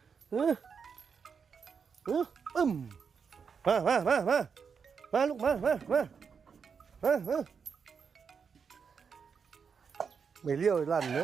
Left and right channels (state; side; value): quieter; left; 6.2 dB